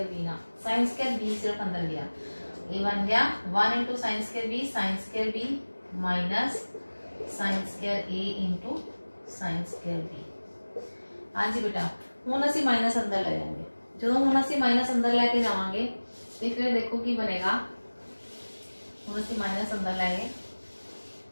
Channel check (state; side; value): inverted; both; correlation -1.00